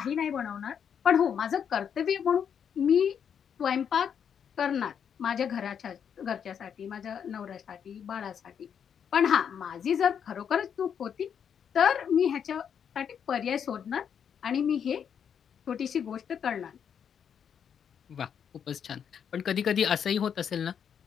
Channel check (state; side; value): quieter; right; 7.8 dB